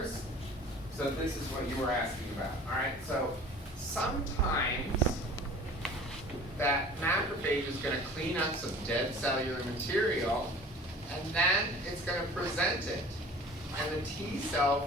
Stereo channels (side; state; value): both; normal; correlation 0.44